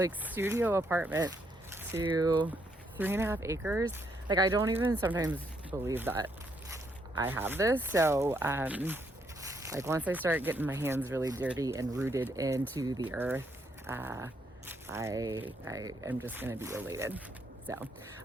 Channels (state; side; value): normal; both; correlation 0.74